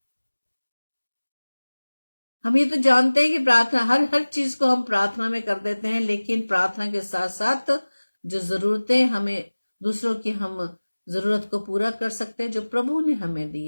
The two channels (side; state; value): both; inverted; correlation -1.00